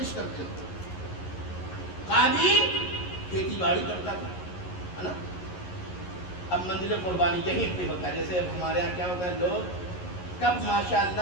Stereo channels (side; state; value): right; late; 11 ms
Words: کرتے تھے، قابیل کھیتی باڑی کرتا تھا، ہے نا۔ اب منزل قربانی یہیں پہ ہوتا ہے۔ جیسے اب ہمارے یہاں کیا ہوتا ہے، لوگ کب ماشاء